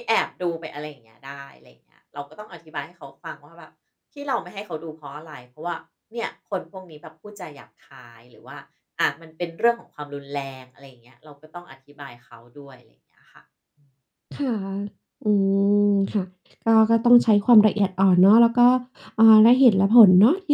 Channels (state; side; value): identical; both; correlation 1.00